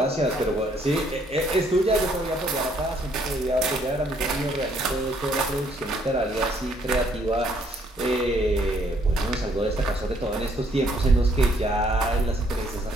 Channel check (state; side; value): normal; both; correlation 0.67